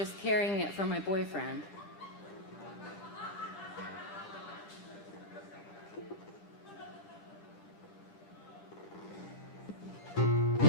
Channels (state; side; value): late; left; 7.0 ms